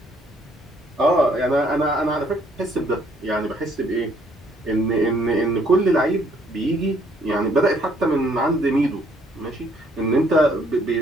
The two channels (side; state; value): both; normal; correlation 0.65